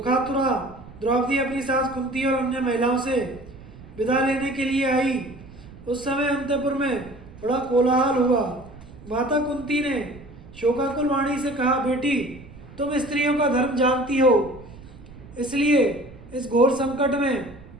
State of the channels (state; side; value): noise; right; rumble, 18 dB below the sound